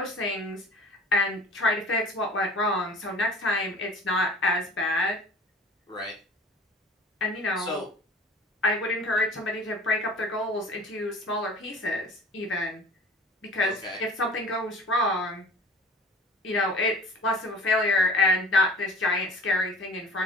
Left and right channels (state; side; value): normal; both; correlation 0.43